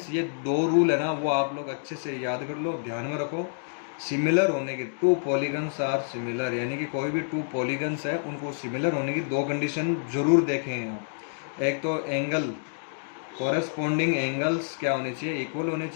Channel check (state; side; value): silent; right; digital silence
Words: ये 2 रूल है ना वो आप लोग अच्छे से याद कर लो, ध्यान में रखो। सिमिलर होने के 2 पॉलीगन्स आर सिमिलर, यानी कि कोई भी 2 पॉलीगन्स है उनको सिमिलर होने की 2 कंडीशन जरूर देखें हैं। एक तो एंगल, कॉरेस्पॉन्डिंग एंगल्स क्या होने चाहिए, इक्वल होने